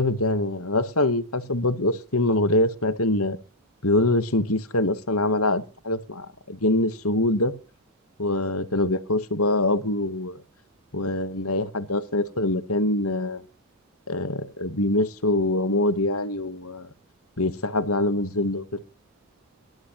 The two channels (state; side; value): normal; both; correlation -0.06